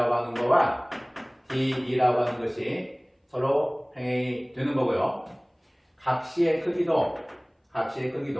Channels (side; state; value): both; identical; correlation 1.00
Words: 하는 거와 DE라고 하는 것이 서로 평행이 되는 거고요. 각 C의 크기도